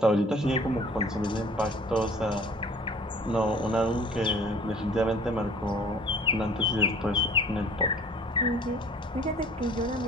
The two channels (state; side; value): normal; both; correlation 0.50